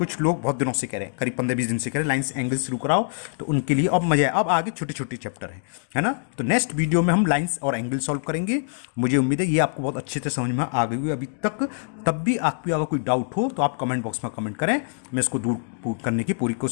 लोग बहुत दिनों से कह रहे हैं, करीब 15-20 दिन से कह रहे हैं लाइंस एंगल शुरू कराओ, तो उनके लिए अब मजा है। अब आगे छोटे छोटे चैप्टर है ना। तो नेक्स्ट वीडियो में हम लाइंस और एंगल सॉल्व करेंगे। मुझे उम्मीद है ये आपको बहुत अच्छे से समझ में आ गई हुई अभी तक। तब भी आपको अगर कोई डाउट हो तो आप कमेंट बॉक्स में कमेंट करें, मैं इसको दूर करने की पूरी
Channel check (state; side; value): silent; right; digital silence